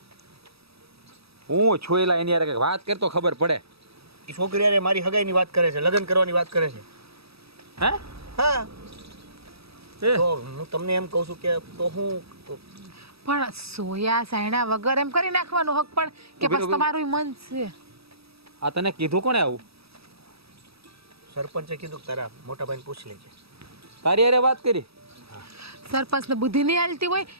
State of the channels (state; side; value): late; left; 0.77 ms